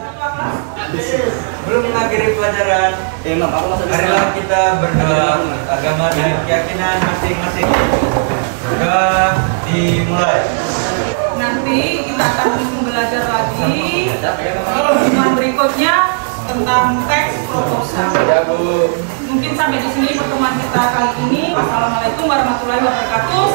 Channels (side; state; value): left; silent; digital silence